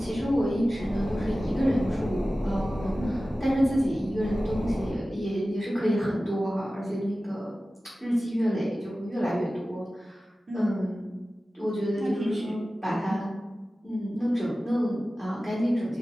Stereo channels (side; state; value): both; normal; correlation 0.96